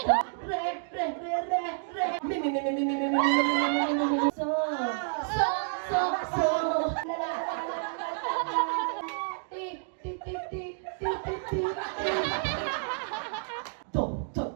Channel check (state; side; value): silent; left; digital silence